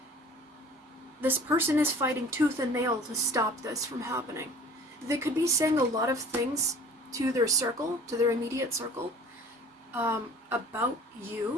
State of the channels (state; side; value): normal; both; correlation 0.46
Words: this person is fighting tooth and nail to stop this from happening. They could be saying a lot of things to their circle, to their immediate circle, about